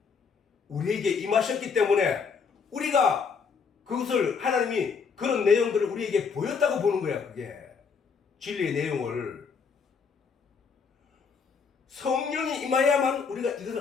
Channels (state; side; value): quieter; right; 5.7 dB